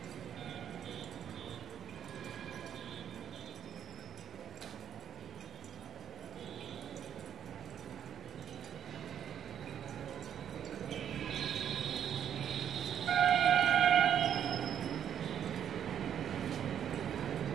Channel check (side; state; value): left; quieter; 9.3 dB